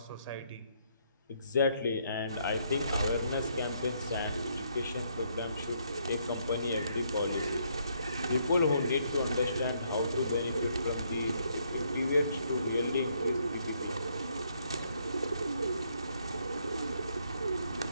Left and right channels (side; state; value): both; inverted; correlation -0.72